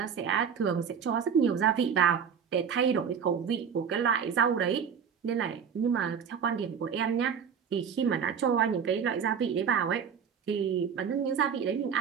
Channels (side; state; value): left; quieter; 7.2 dB